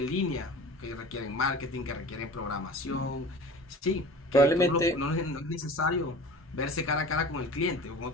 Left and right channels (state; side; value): normal; both; correlation 0.40